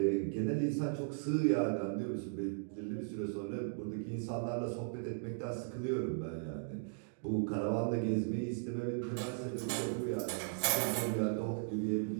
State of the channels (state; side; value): silent; left; digital silence